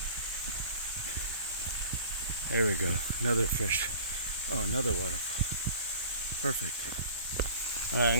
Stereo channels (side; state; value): both; inverted; correlation -0.45